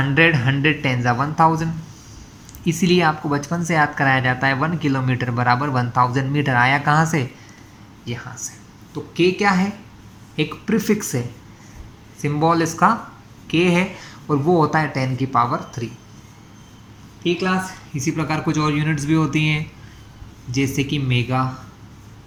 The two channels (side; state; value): both; identical; correlation 1.00